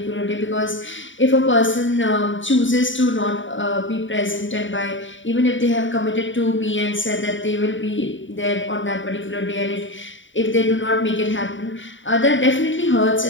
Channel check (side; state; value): right; late; 0.55 ms